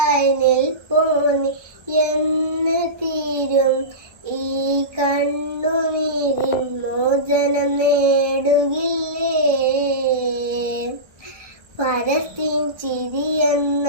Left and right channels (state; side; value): late; left; 1.1 ms